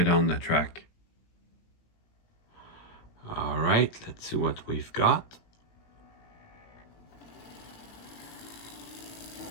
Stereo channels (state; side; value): late; right; 18 ms